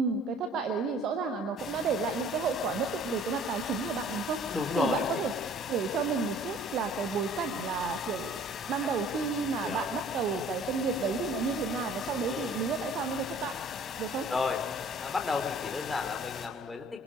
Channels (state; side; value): normal; both; correlation 0.52